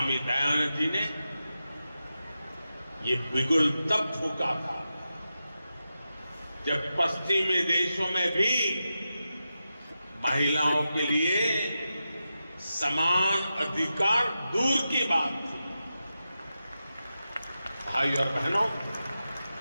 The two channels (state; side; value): inverted; both; correlation -0.90